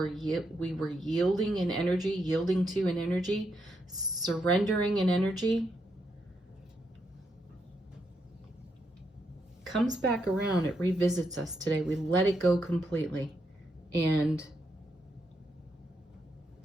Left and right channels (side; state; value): both; normal; correlation 0.80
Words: we were yielding in energy, yielding to an energy, surrendering an energy, comes back around. It revisits us today. We let it go completely. And